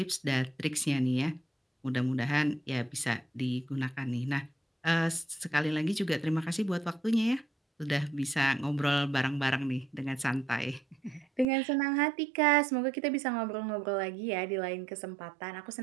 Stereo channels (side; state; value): left; drops out; at 11.5 s